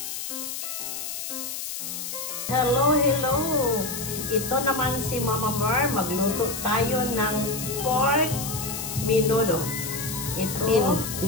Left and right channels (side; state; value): left; noise; hiss, 6 dB below the sound